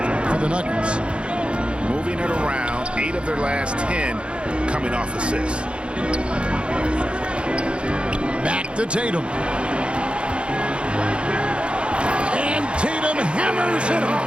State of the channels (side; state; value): left; late; 0.057 ms